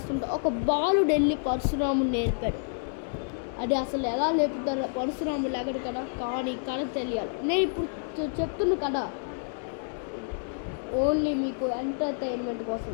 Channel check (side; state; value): right; silent; digital silence